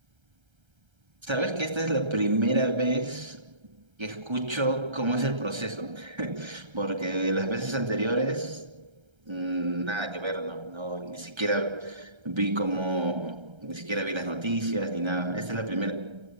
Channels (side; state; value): left; late; 1.3 ms